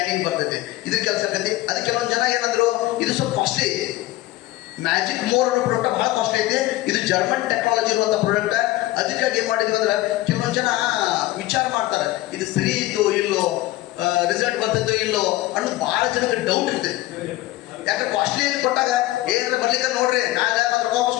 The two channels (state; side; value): quieter; right; 17.1 dB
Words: ಬರ್ತೈತಿ. ಇದ್ರ ಕೆಲಸ ಆಗ್ತೈತಿ. ಅದಕ್ಕೆ ಕೆಲವೊಂದು ಜನ ಏನಂದ್ರು ಇದು ಸ್ವಲ್ಪ ಕಾಸ್ಟ್ಲಿ. ಮ್ಯಾಜಿಕ್ ಮೋರ್ ಅನ್ನೋ ಪ್ರಾಡಕ್ಟ್ ಬಹಳ ಕಾಸ್ಟ್ಲಿ ಐತಿ. ಇದು ಜರ್ಮನ್ ಟೆಕ್ನಾಲಜಿ ಇರುವಂತ ಪ್ರಾಡಕ್ಟ್. ಅದಕ್ಕಾಗಿ ಏನ್ ಮಾಡಿದ್ವಿ ಅಂದ್ರೆ ಕೆಲವೊಂದು ಜನ ವಿಚಾರ ಮಾಡ್ತಾರೆ ಇದು ಸರಿ ಇತ್ತು ಇಲ್ಲೋ, ರಿಸಲ್ಟ್ ಬರ್ತೈತೋ ಇಲ್ಲೋ ಅನ್ನೋದು ಬಹಳ ಜನಕ್ಕೆ ಡೌಟ್ ಇರ್ತೈತಿ. ಯಾಕೆ ಕಾಸ್ಟ್ಲಿ ಕೊಟ್ಟಾಗ ಏನಾರ ಬರ್ಲಿಕ್ಕೆ ನೋಡ್ರಿ ನಾಳೆ ಮತ್ತೆ ರೊಕ್ಕ ವಾಪಸ್